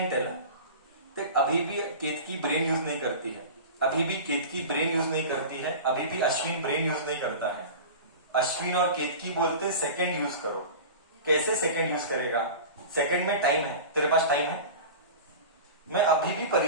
tell. अभी भी केतकी ब्रेन यूज नहीं करती है, अभी भी Ashwin brain use नहीं करता है. अश्विन और केतकी बोलते सेकंड यूज करो. कैसे सेकंड यूज करेगा? सेकंड में टाइम है, तेरे पास टाइम है. मैं अभी भी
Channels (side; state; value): both; inverted; correlation -0.33